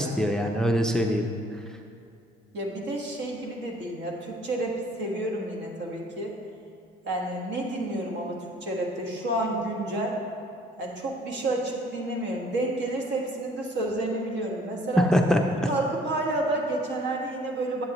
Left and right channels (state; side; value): normal; both; correlation 0.58